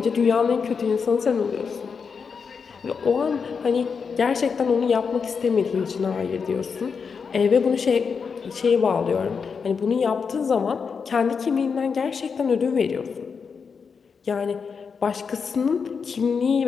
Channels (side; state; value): right; quieter; 5.8 dB